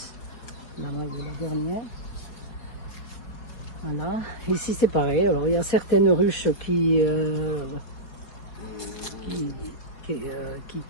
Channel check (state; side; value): late; right; 4.6 ms